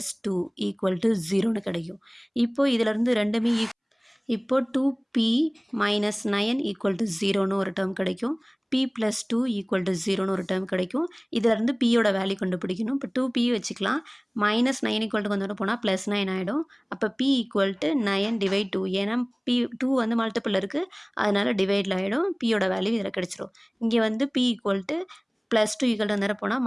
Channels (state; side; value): identical; both; correlation 1.00